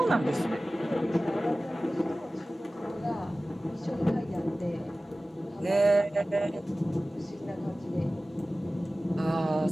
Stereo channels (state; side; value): normal; both; correlation 0.97